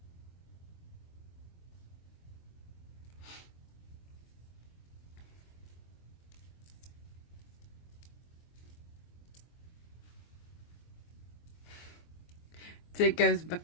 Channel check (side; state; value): right; late; 23 ms